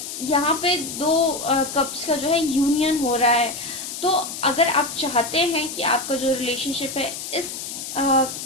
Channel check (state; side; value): noise; left; hiss, 8 dB below the sound